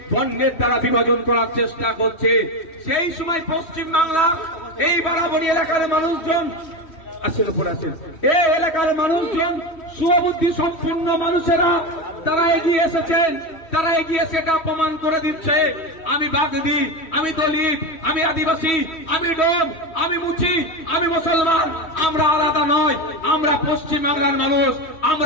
বর্ণের দ্বারা বিভাজন করার চেষ্টা করছে। সেই সময় পশ্চিম বাংলার এই বারাবণী এলাকার মানুষজন এই এলাকার মানুষজন সুবুদ্ধি সম্পন্ন মানুষেরা তারা এগিয়ে এসেছেন। তারা এগিয়ে সেটা প্রমাণ করে দিচ্ছে। আমি বাগদি, আমি দলিত, আমি আদিবাসী, আমি ডোম, আমি মুচি, আমি মুসলমান, আমরা আলাদা নয়। আমরা পশ্চিম বাংলার মানুষ।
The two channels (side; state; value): right; late; 3.1 ms